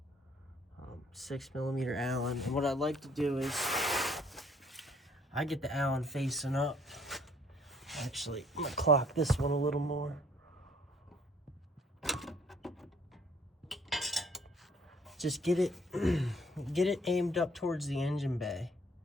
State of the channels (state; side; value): normal; both; correlation 0.61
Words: 6mm Allen. And what I'd like to do is, I get the Allen facing up. Actually, I'm gonna clock this one a little more. Just get it aimed up towards the engine bay,